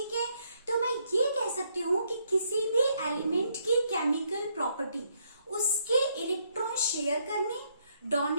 है, तो मैं ये कह सकती हूँ कि किसी भी एलिमेंट की केमिकल प्रॉपर्टी उसके इलेक्ट्रॉन शेयर करने,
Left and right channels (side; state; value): both; inverted; correlation -0.73